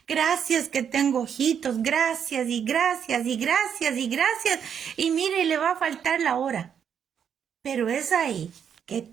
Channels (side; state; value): left; quieter; 8.0 dB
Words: gracias que tengo ojitos, gracias, y mire, le va a faltar la hora, pero es ahí